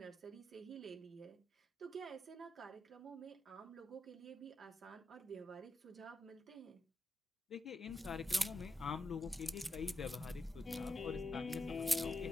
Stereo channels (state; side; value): normal; both; correlation 0.86